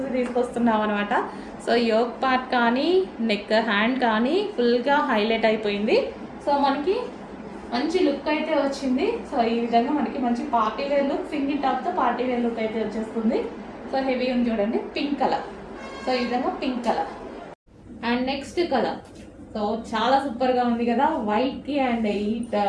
తీసుకొస్తున్నాం అనమాట. సో యోక్ పార్ట్ కానీ నెక్ హ్యాండ్ కానీ ఫుల్గా హైలైట్ అయిపోయింది. సో మనకి మంచి లుక్ అయితే వచ్చింది. సో ఈ విధంగా మనకి మంచి పార్టీ వేర్ లుక్, సింగిల్ టాప్తో పార్టీ వేర్ లుక్ అయితే వచ్చేస్తుంది. సో హెవీ ఉంది చూడండి, పింక్ కలర్. సో ఈ విధంగా pink colour. And next colour so చాలా సూపర్గా ఉంది కదా, వైట్కి అండ్ ఈ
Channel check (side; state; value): both; identical; correlation 1.00